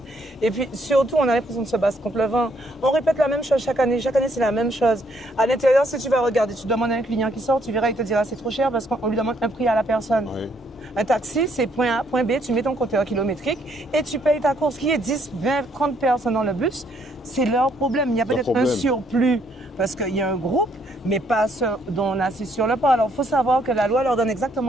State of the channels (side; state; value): both; normal; correlation 0.69